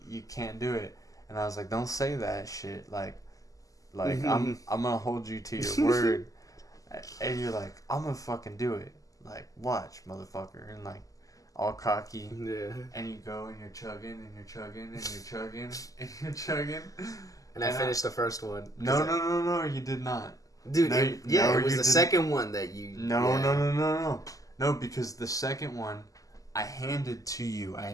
you can't do it. And I was like, don't say that shit. Like I'm gonna hold you to your word. And you're like, I'm gonna fucking do it. Like, watch, motherfucker. And like, all cocky. Yeah. And you go and you're chugging and you're chugging and you're chugging and you're chugging. And I finished the first one. No, you did not. Dude, it was the second one that you... No, because the second one, I handed to you.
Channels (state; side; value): late; right; 0.17 ms